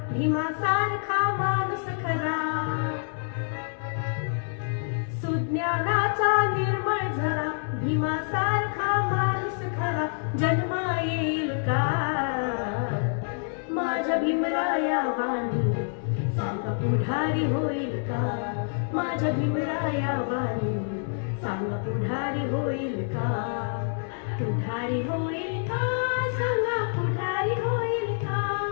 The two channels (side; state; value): right; silent; 60 dB below the other